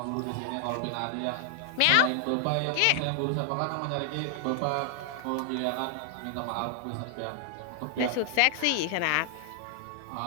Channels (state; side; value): different; both; correlation 0.00